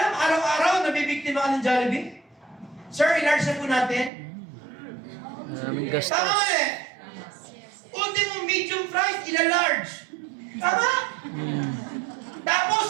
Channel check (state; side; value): drops out; left; at 4.1 s